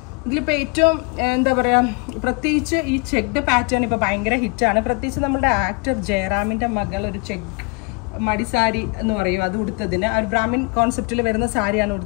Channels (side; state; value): right; quieter; 29.4 dB